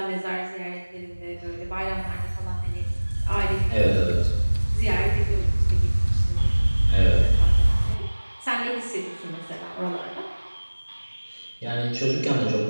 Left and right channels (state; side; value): inverted; both; correlation -1.00